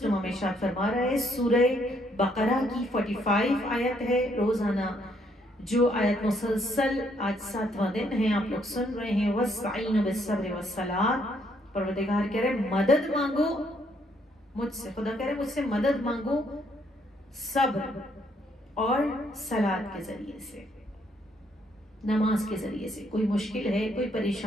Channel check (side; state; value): both; normal; correlation 0.70